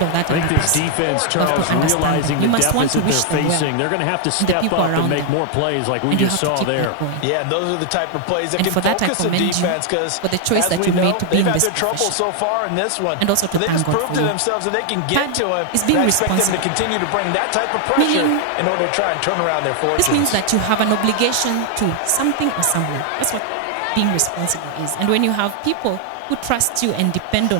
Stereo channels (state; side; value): different; both; correlation 0.00